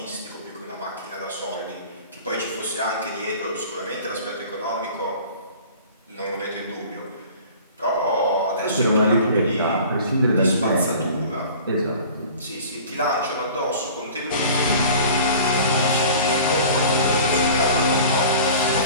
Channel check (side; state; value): both; inverted; correlation -0.43